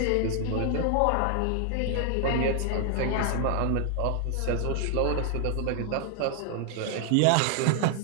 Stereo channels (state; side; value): different; both; correlation 0.00